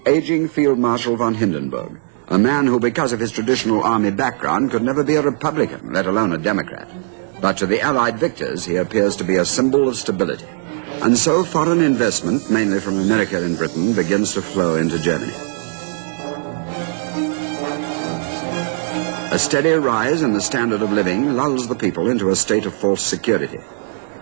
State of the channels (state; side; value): silent; left; digital silence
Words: aging Field Marshal von Hindenburg, a man who, because of his traditional army background, could never be a Republican, let alone a Democrat. But to the Allied victors, he appears to be a symbol of stability. And so foreign investment, mainly from America and Britain, begins to flow into Germany. A steady rise in the standard of living lulls the people into a state of false security.